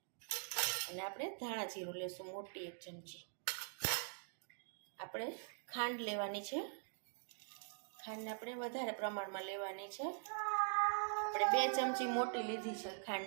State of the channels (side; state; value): left; silent; digital silence